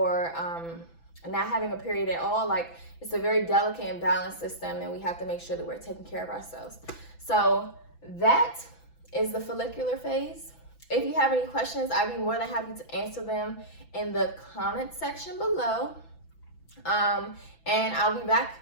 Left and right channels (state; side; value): late; right; 6.0 ms